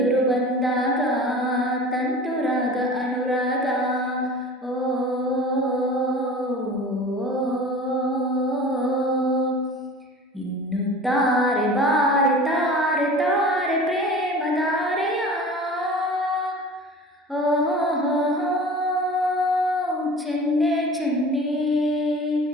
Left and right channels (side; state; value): both; normal; correlation 0.39